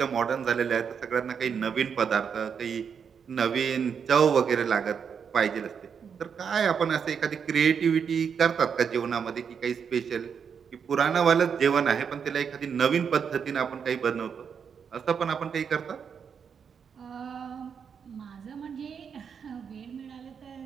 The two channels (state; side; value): quieter; left; 6.9 dB